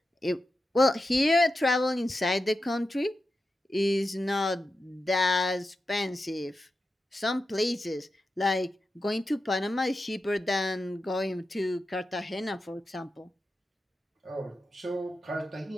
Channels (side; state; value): both; normal; correlation 0.90